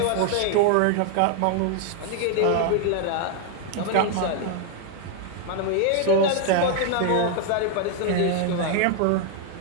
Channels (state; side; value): different; both; correlation 0.00